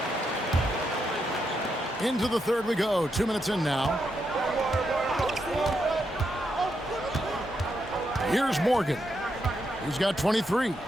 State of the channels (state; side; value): normal; both; correlation 0.82